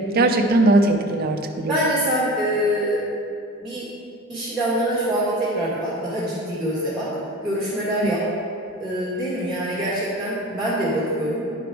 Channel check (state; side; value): normal; both; correlation 0.37